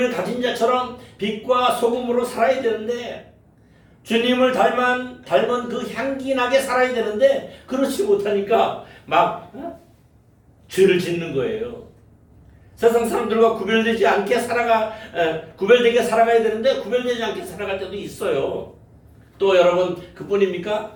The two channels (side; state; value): both; identical; correlation 1.00